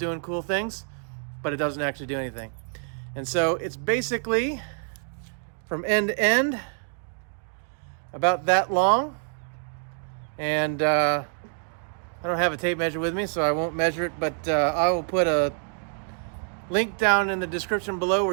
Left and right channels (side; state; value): left; silent; 57 dB below the other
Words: cool things, but it doesn't actually do anything. And so it's basically from end to end about that long. And I don't have a tape measure with me, so I won't measure it, but I will put a link down in the description below